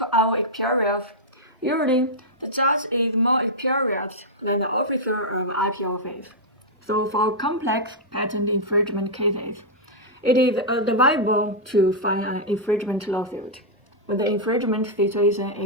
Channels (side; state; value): both; normal; correlation -0.06